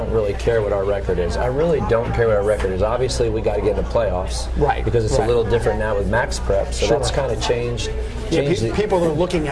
really care what our record is. I really don't care what our record is. Obviously, we got to get in the playoffs. Because it's a little different now with max prep. So that's kind of changed. People are looking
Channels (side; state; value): both; identical; correlation 1.00